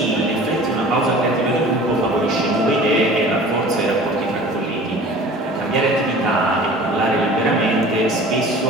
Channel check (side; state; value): both; normal; correlation 0.43